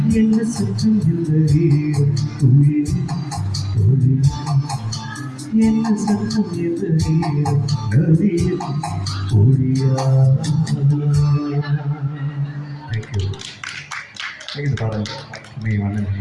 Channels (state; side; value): identical; both; correlation 1.00